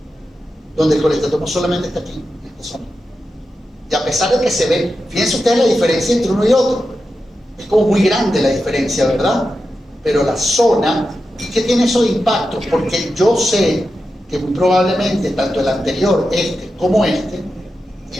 donde el colestatoma solamente está aquí, en esta zona. Y a pesar de que se ve, fíjense ustedes la diferencia entre uno y otro, es como muy grande la diferencia, ¿verdad? Pero la zona, ¿qué tiene eso de impacto? Porque yo sé que muy probablemente tanto el anterior, este, como este,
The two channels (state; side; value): normal; both; correlation 0.90